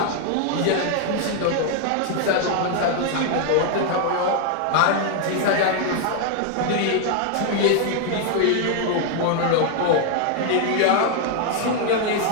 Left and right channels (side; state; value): both; different; correlation 0.00